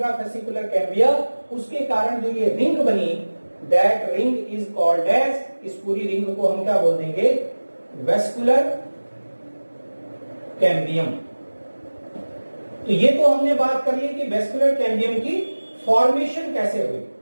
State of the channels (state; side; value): inverted; both; correlation -1.00